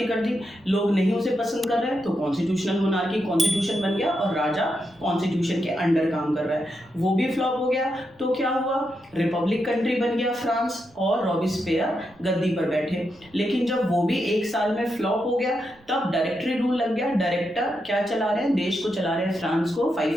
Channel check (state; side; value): noise; right; rumble, 30 dB below the sound